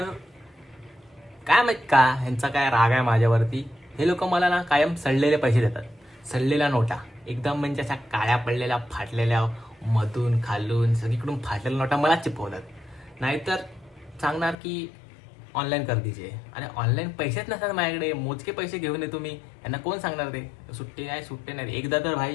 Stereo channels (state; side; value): drops out; right; at 14.6 s